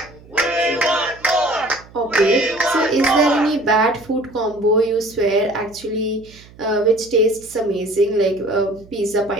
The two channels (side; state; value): right; noise; hum, 23 dB below the sound